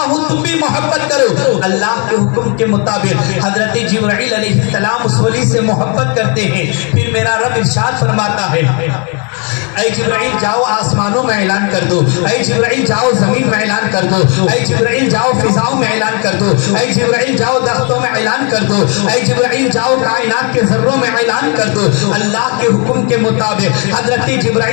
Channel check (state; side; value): quieter; right; 35.3 dB